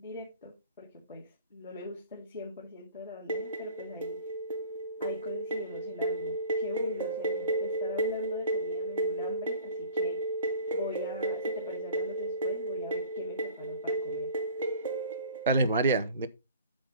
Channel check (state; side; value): inverted; both; correlation -0.46